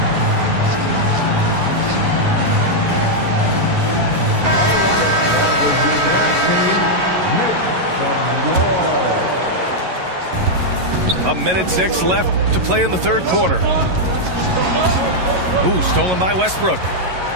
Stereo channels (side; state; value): left; late; 11 ms